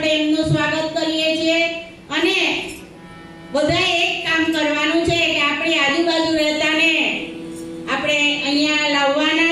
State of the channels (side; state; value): both; identical; correlation 1.00